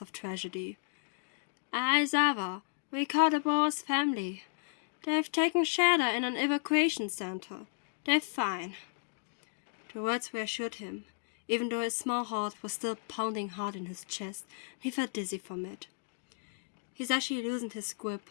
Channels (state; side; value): silent; right; digital silence